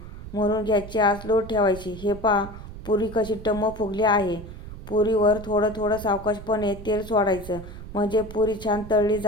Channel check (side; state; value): right; noise; rumble, 13 dB below the sound